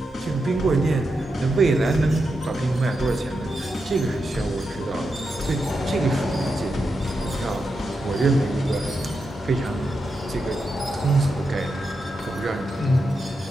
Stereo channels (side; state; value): both; normal; correlation 0.86